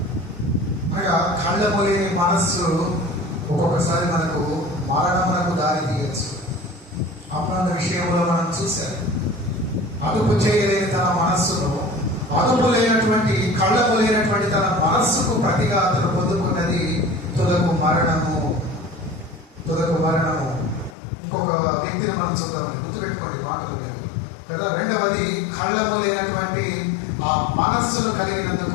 అనగా కళ్ళము లేని మనస్సు ఒక్కొక్కసారి మనకు మరణమునకు దారి తీయచ్చు. అమ్మాన విషయంలో మనం చూశాం, అదుపు చేయలేని తన మనస్సును, అదుపు లేనటువంటి కళ్ళము లేనటువంటి తన మనస్సుకు ప్రతిగా అతను పొందుకున్నది తుదకు మరణము. ఇంకొక వ్యక్తిని మనం చూద్దాం, గుర్తుపెట్టుకోండి మాటలు మీరు కదా. రెండవది, కళ్ళము లేనటువంటి ఆ మనస్సును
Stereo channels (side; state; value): right; drops out; at 21.0 s